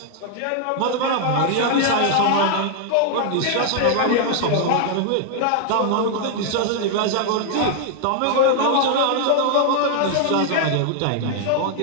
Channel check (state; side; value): different; both; correlation 0.00